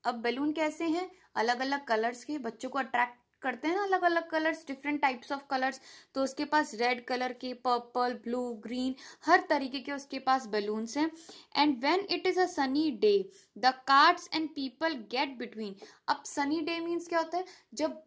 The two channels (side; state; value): both; identical; correlation 1.00